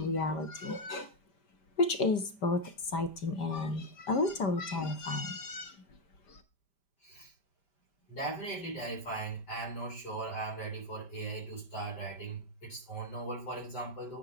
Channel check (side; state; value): right; late; 5.1 ms